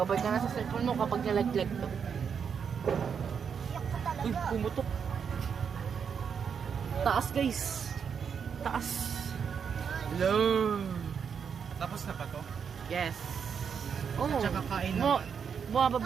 ka na sa cellphone mo kapag nalaglag to. Iyak ka Uy, talaga. pumutok. Taas, guys. Taas. Hello. Tapos na pa to? Yes. Oh, Tsaka kain mo, naman.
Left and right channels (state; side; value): quieter; left; 6.9 dB